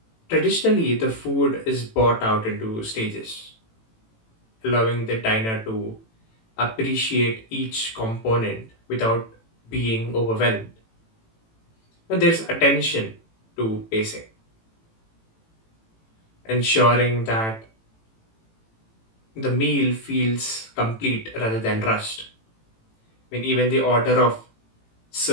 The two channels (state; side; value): late; right; 18 ms